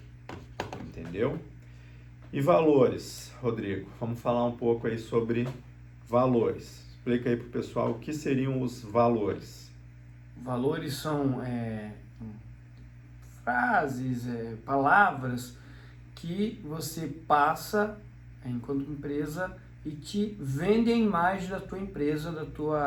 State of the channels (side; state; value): both; identical; correlation 1.00